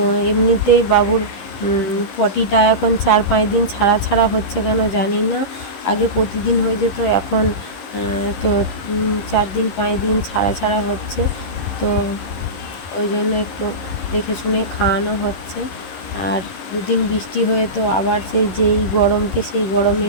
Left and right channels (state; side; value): late; right; 11 ms